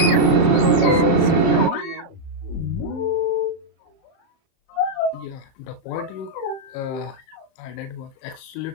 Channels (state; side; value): late; right; 30 ms